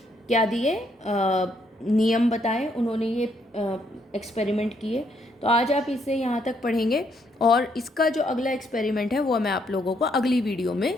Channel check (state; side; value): normal; both; correlation 0.72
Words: क्या दिए, नियम बताए, उन्होंने ये एक्सपेरिमेंट किए। तो आज आप इसे यहाँ तक पढ़ेंगे और इसका जो अगला एक्सपेरिमेंट है वो मैं आप लोगों को अगली वीडियो